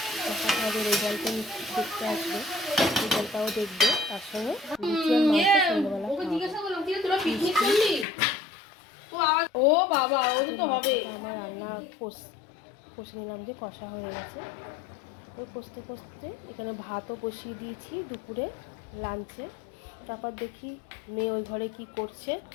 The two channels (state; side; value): drops out; right; at 8.1 s